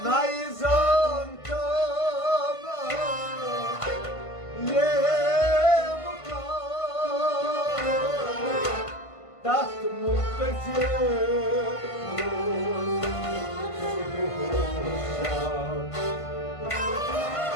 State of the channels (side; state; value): right; late; 1.5 ms